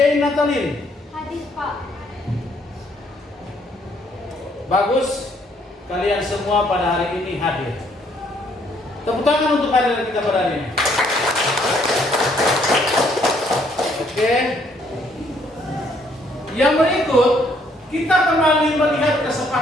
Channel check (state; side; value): normal; both; correlation 0.67